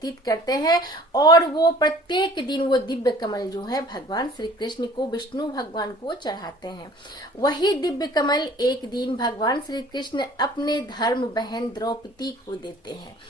करते हैं। और वो प्रत्येक दिन वो दिव्य कमल जो है भगवान श्री कृष्ण को, विष्णु भगवान को चढ़ाते हैं। वही दिव्य कमल एक दिन भगवान श्री कृष्ण अपने धर्म बहन द्रौपदी को देते हैं।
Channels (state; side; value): normal; both; correlation 0.50